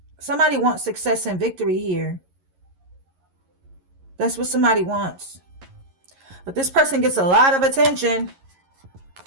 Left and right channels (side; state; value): left; late; 11 ms